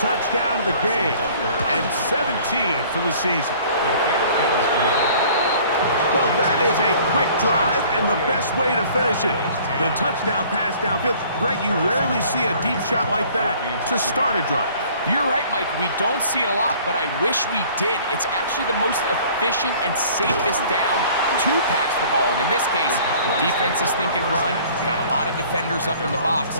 of the game and 17 for the season. Well, that is a quick drive and the best way to finish it. The touchdown pass downfield. Greg, you rarely see a deep shot like that to start a drive. You're right, Mike. We don't see it a lot, but I wish we did. It's actually the most efficient and safest down to pass the ball. And in this case, the defense is thinking run, got a lot of defenders up in the box,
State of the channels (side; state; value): both; inverted; correlation -0.52